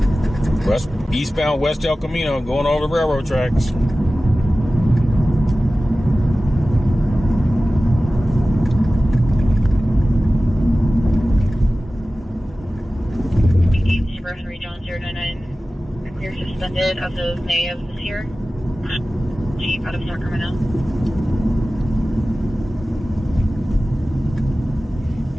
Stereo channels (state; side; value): normal; both; correlation 0.96